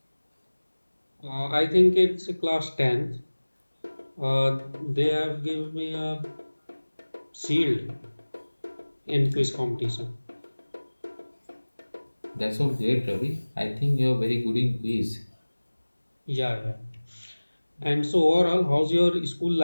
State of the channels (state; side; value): inverted; both; correlation -1.00